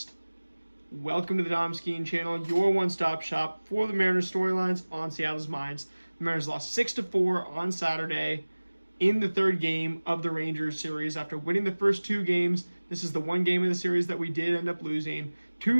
Welcome to the Dom Skiing Channel, your one-stop shop for the Mariners storylines on Seattle's minds. The Mariners lost 6-4 on Saturday in the third game of the Rangers series after winning the first two games. This is the one game of the series that we did end up losing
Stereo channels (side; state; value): both; inverted; correlation -1.00